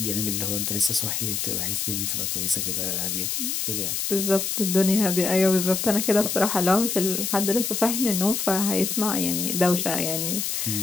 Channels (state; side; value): noise; left; hiss, 1 dB below the sound